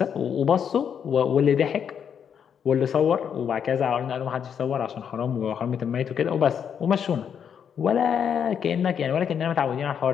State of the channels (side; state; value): right; quieter; 7.9 dB